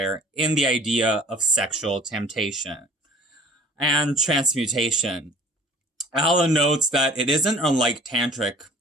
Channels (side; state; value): both; normal; correlation 0.49